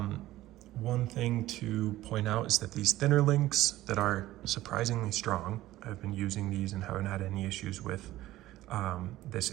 thing to point out is that these thinner links that are surprisingly strong, I've been using these and haven't had any issues with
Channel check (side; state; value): left; quieter; 15.8 dB